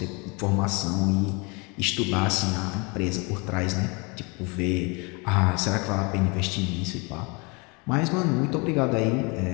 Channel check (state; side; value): quieter; right; 29.6 dB